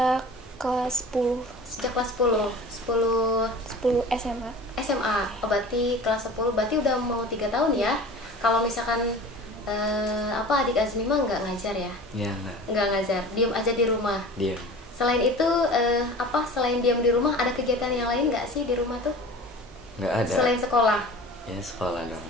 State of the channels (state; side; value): normal; both; correlation 0.39